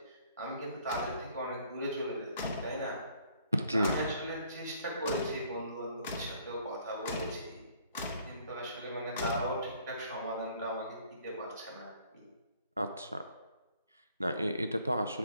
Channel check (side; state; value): both; inverted; correlation -0.61